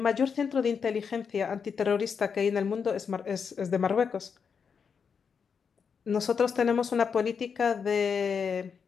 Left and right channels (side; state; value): right; quieter; 6.3 dB